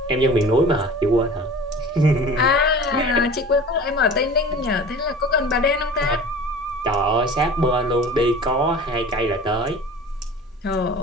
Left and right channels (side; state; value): both; normal; correlation 0.40